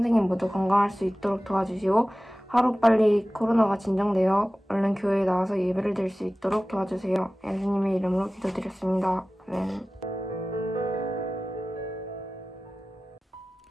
모두 건강할 수 있도록 도와주시고 하루빨리 코로나가 진정되어 얼른 교회에 나와서 예배를 드릴 수 있도록 도와주세요. 예수님의 이름으로 기도드렸습니다. 아멘.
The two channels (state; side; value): normal; both; correlation 0.97